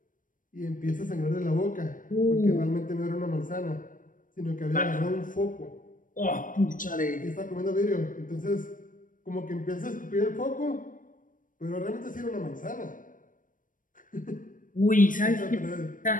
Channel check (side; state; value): right; late; 0.39 ms